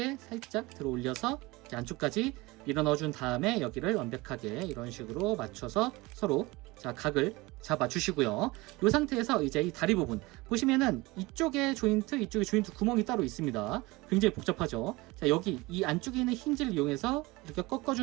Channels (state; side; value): quieter; left; 22.3 dB